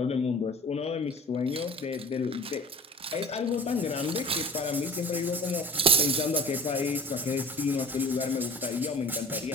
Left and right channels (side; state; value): both; normal; correlation 0.43